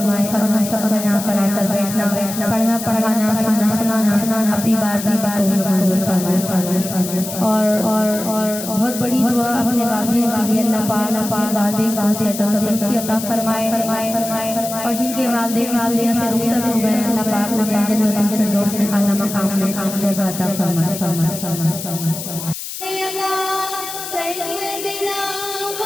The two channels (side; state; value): left; noise; hiss, 8 dB below the sound